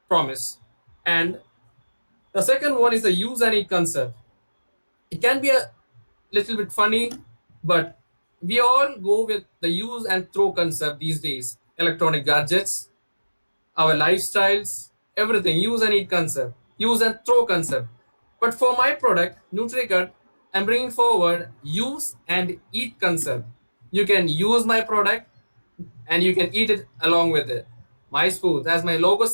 promise. And the second one is the use and eat concept. It can be a little bit funny, but we all go with the use and throw concept these days. Electronic gadgets, our lifestyles, everything, use and eat concept, use and throw concept. But for my product, NutriGut, I'm bringing forward use and eat concept. You can use my product and you can eat it along with it. My spoons, as my logo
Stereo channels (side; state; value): both; inverted; correlation -1.00